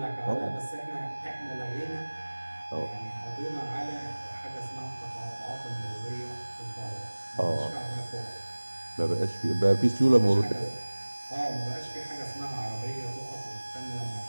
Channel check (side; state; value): both; inverted; correlation -1.00